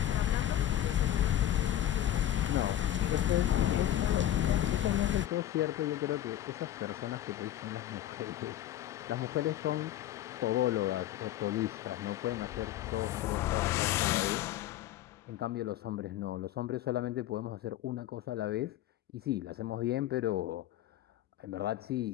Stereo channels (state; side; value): quieter; right; 12.6 dB